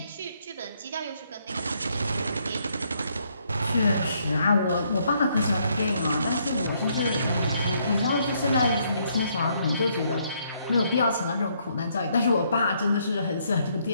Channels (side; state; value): both; inverted; correlation -0.71